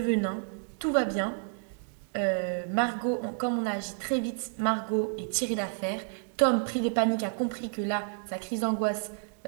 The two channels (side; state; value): left; silent; 58 dB below the other